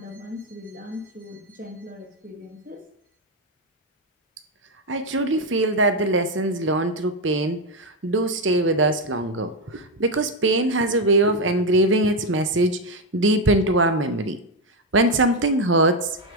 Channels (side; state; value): both; normal; correlation 0.07